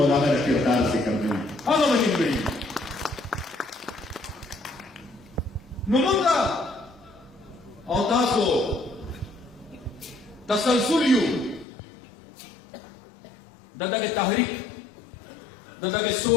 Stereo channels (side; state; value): right; drops out; at 11.7 s